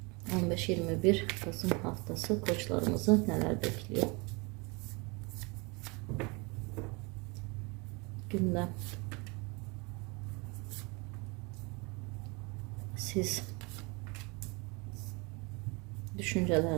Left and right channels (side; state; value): left; quieter; 28.5 dB